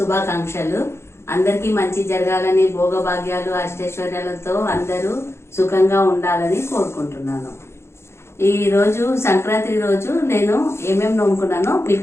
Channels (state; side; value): late; right; 0.13 ms